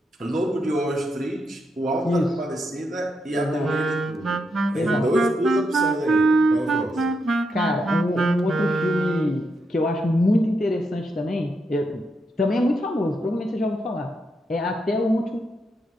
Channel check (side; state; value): both; normal; correlation 0.82